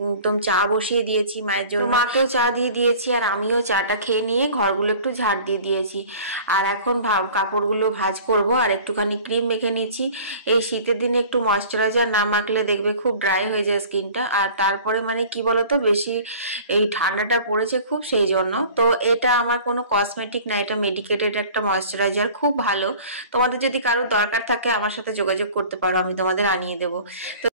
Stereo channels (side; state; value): both; inverted; correlation -0.45